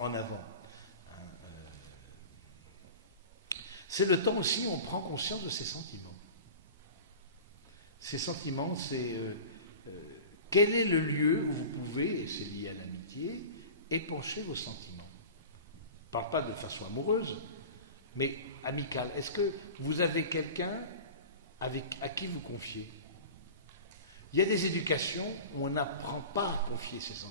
avant. C'est le temps aussi où on prend conscience de ses sentiments. Ces sentiments, c'est quel est le lieu où vous pouvez, et c'est lié à l'amitié, épancher vos sentiments. Je ne parle pas de façon amoureuse, mais amicale. Est-ce que vous avez quelqu'un à qui vous confiez? Il y a des éducations où on n'apprend pas à confier ses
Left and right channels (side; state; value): both; inverted; correlation -0.35